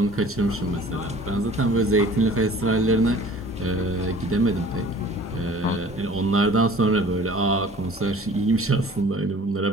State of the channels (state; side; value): normal; both; correlation 0.48